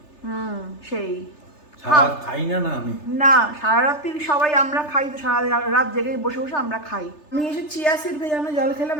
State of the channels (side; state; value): right; late; 3.3 ms